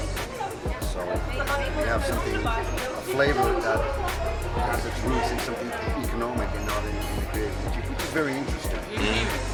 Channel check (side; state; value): both; identical; correlation 1.00